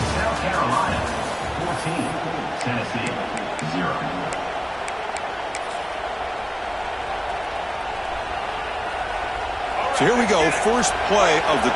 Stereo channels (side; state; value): both; identical; correlation 1.00